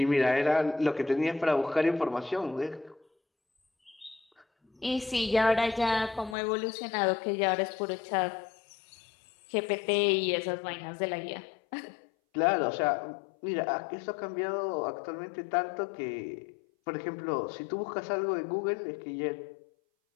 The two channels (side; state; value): right; drops out; at 6.4 s